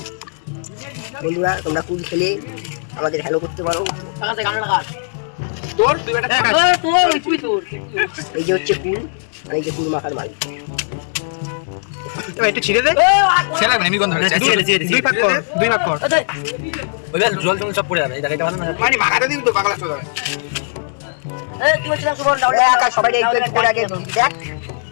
বন্ধুরা তোমরা কুল খেলে আমাদের হ্যালো করতে পারো তোর তুই বেটা এই যে হচ্ছে কুল আর এই যে কুল মাখার মাল এবার একটু ছিঁড়ে দে। সে লাগবে এমনি গন্ধ হচ্ছে। দুই ভাগ কর, দুই ভাগ কর। ওই জল টল সব পড়ে যাবে এই জায়গাটা ভালো না মানে মাখাতে দিবি তো পাগলা চোদা। সবাই একটু করে আগে দেখ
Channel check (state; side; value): silent; right; digital silence